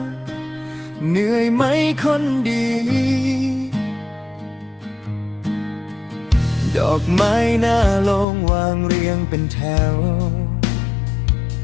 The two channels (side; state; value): right; drops out; at 8.2 s